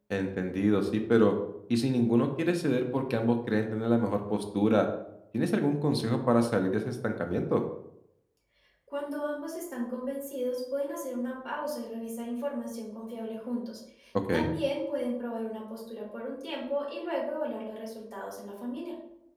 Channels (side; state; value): both; identical; correlation 1.00